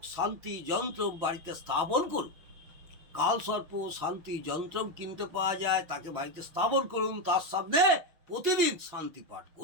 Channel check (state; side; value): late; left; 6.1 ms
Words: শান্তি যন্ত্র বাড়িতে স্থাপন করুন। কালসর্প শান্তি যন্ত্র কিনতে পাওয়া যায়, তাকে বাড়িতে স্থাপন করুন। তার সামনে প্রতিদিন শান্তি পাঠ